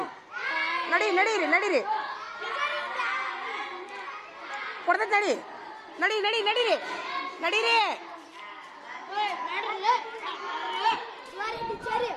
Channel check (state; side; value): identical; both; correlation 1.00